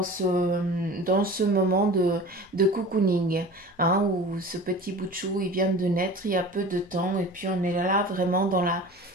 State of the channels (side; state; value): both; normal; correlation 0.38